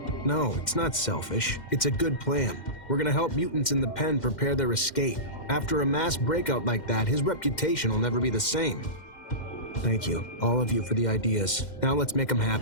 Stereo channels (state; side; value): late; right; 2.1 ms